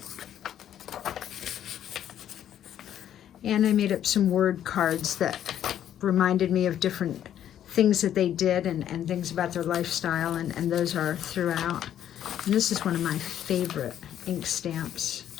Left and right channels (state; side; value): quieter; right; 10.6 dB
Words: And I made up some word cards that reminded me of different things that they did and things about their lifestyle, and those are throughout. And this is one of my favorite ink stamps.